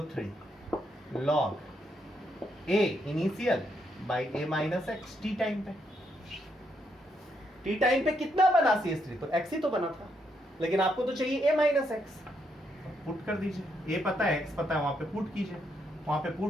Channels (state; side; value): normal; both; correlation 0.77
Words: log A initial by A minus x T time पे। टी टाइम पे कितना बना CH3? तो x ही तो बना था, लेकिन आपको तो चाहिए A माइनस एक्स। पुट कर दीजिए, A पता है, x पता है, वहां पे पुट कीजिए। वहां पे